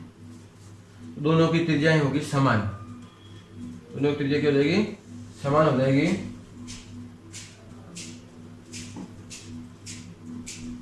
दोनों की त्रिज्याएं होगी समान, दोनों की त्रिज्या क्या हो जाएगी, समान हो जाएगी।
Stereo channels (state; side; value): identical; both; correlation 1.00